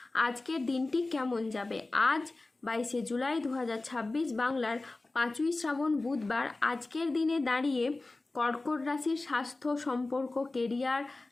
আজকের দিনটি কেমন যাবে। আজ 22শে জুলাই 2026 বাংলার 5ই শ্রাবণ বুধবার আজকের দিনে দাঁড়িয়ে কর্কট রাশির স্বাস্থ্য, সম্পর্ক, কেরিয়ার,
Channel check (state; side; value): quieter; right; 3.2 dB